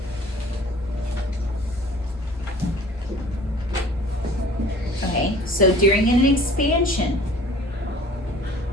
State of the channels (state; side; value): normal; both; correlation 0.49